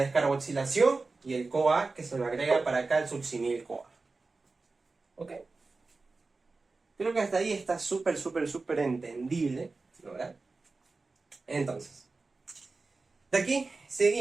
y el CoA que se lo agrega para acá el succinil-CoA. ¿Ok? Creo que hasta ahí está súper, súper, súper entendible, ¿no, verdad? Entonces, de aquí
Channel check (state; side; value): quieter; left; 3.8 dB